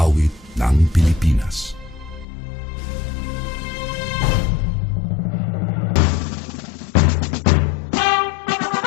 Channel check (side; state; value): right; drops out; at 2.2 s